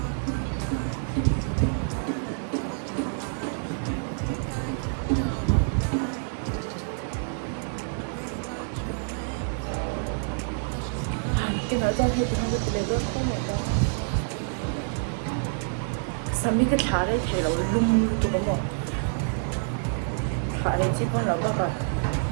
Cái nói ra thì không được lấy được không mà đâu. Sao mấy cái thả đấy thì nó lung tụi nó thả đấy chỉ còn là cái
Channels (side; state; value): left; silent; 60 dB below the other